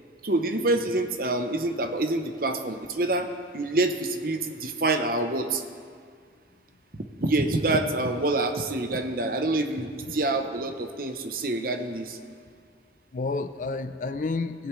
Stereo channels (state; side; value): normal; both; correlation 0.29